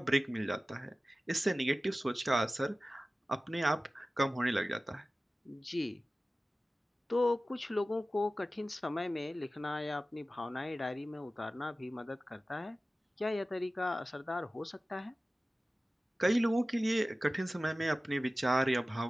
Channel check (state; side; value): normal; both; correlation 0.96